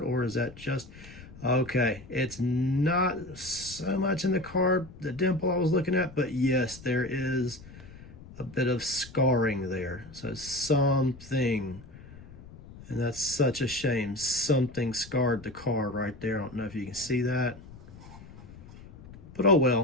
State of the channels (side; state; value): left; noise; rumble, 18 dB below the sound